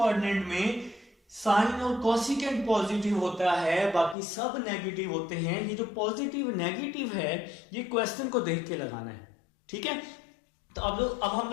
में साइन और कोसिकेंट पॉजिटिव होता है, बाकी सब नेगेटिव होते हैं। ये जो पॉजिटिव नेगेटिव है ये क्वेश्चन को देख के लगाना है, ठीक है। तो अब हम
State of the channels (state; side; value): drops out; right; at 4.2 s